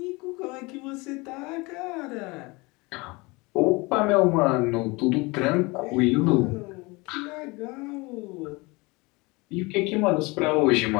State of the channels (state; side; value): quieter; right; 25.2 dB